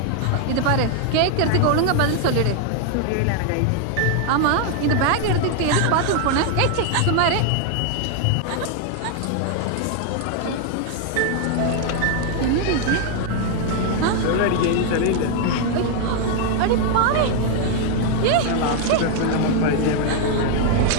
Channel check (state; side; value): different; both; correlation 0.00